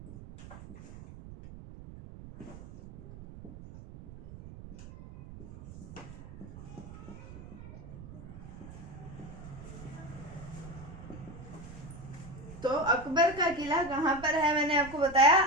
तो अकबर का किला कहाँ पर है? मैंने आपको बताया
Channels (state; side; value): noise; right; rumble, 14 dB below the sound